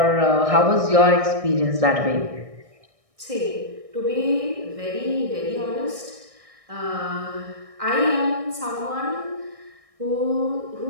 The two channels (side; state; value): left; late; 1.6 ms